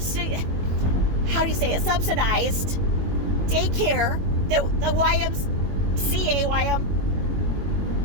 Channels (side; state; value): left; late; 21 ms